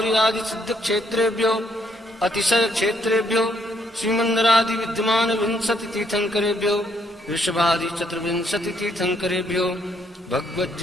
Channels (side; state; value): both; normal; correlation 0.71